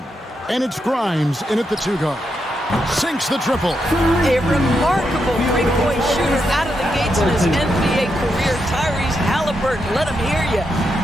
And it's Grimes in at the 2-guard. Sinks the triple. A remarkable three-point shooter out of the gates in his NBA career. Tyrese Halliburton, let him hear you.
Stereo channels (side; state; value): both; normal; correlation 0.83